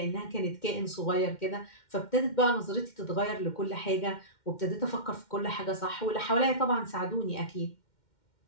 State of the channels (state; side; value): late; right; 2.1 ms